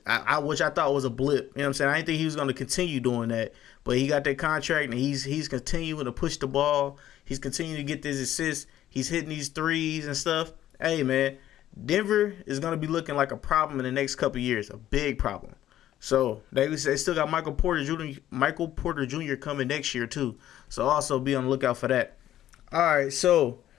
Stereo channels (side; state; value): right; quieter; 12.5 dB